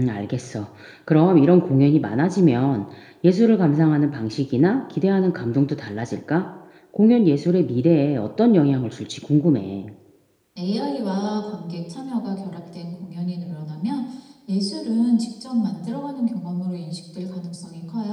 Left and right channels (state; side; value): identical; both; correlation 1.00